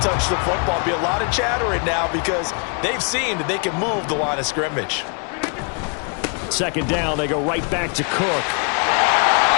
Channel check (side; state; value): right; quieter; 37.8 dB